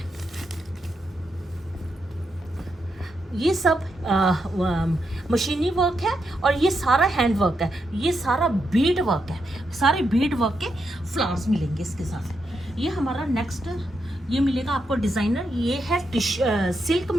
ये सब मशीनी वर्क है और ये सारा हैंड वर्क है। ये सारा बीड वर्क है, सारे बीड वर्क के फ्लावर्स मिलेंगे इसके साथ। ये हमारा नेक्स्ट ये मिलेगा आपको डिज़ाइनर। ये है सिल्क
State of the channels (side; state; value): both; normal; correlation 0.83